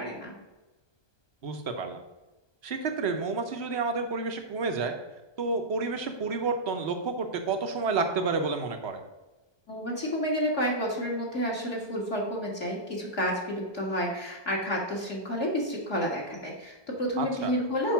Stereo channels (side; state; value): right; late; 1.2 ms